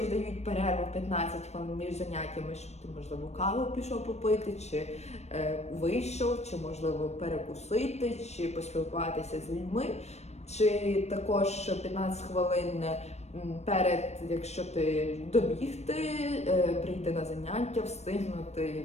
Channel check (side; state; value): right; late; 0.32 ms